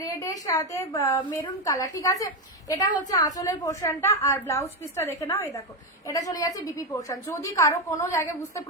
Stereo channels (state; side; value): normal; both; correlation 0.09